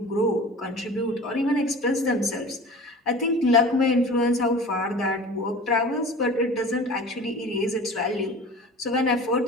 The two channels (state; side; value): normal; both; correlation 0.38